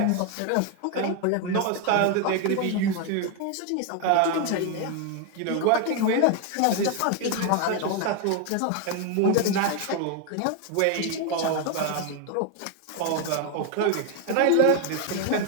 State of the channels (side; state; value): both; different; correlation 0.01